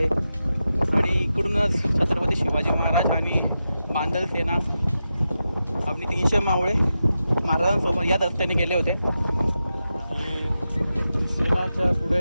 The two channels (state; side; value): inverted; both; correlation -0.90